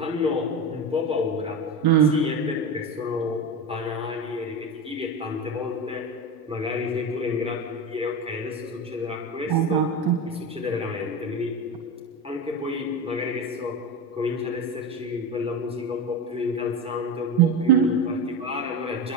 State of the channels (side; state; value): both; normal; correlation 0.21